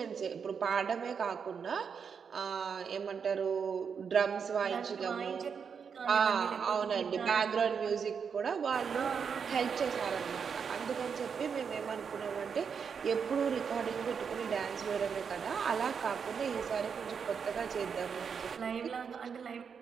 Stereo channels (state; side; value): quieter; left; 6.5 dB